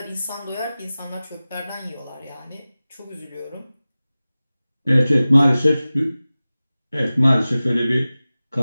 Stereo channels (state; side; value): inverted; both; correlation -0.97